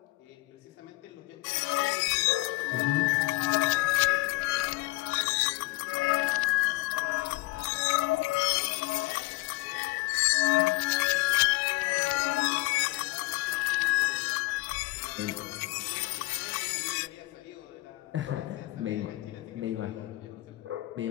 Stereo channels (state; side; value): quieter; right; 20.5 dB